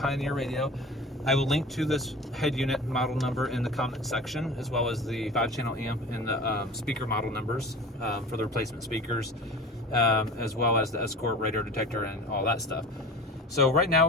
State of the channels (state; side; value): normal; both; correlation 0.37